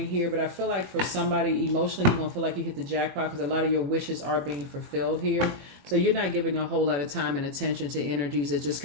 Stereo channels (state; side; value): late; left; 21 ms